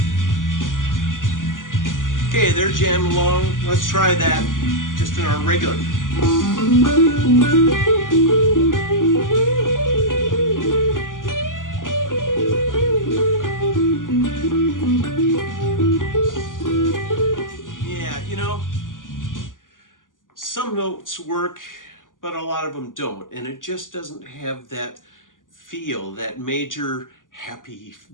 Okay, they're jamming along. Let's try that just in our regular. Yeah, some notes work, but a lot of them don't. And it just doesn't have that feel, that major, happy,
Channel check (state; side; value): late; right; 0.88 ms